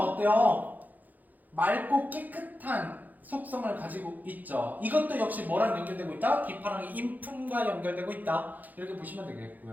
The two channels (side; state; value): left; late; 0.083 ms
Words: 맑고 깨끗한 속성을 가지고 있죠. 이것도 역시 뭐랑 연결되고 있다? 기파랑의 인품과 연결되고 있다. 이렇게 보시면